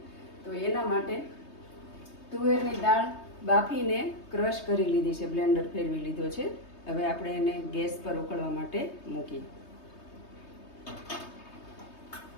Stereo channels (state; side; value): late; right; 3.2 ms